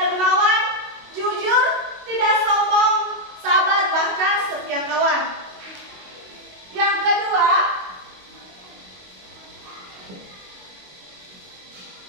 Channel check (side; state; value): left; late; 22 ms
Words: dermawan, jujur, tidak sombong, sabar, bahkan setia kawan. Yang kedua,